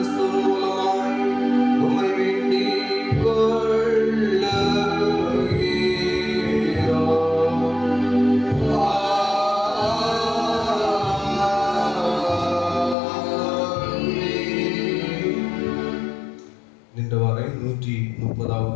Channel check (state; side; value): drops out; right; at 13.0 s